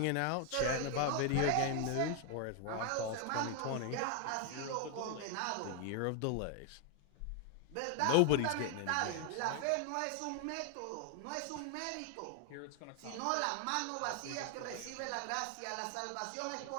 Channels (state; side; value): different; both; correlation 0.00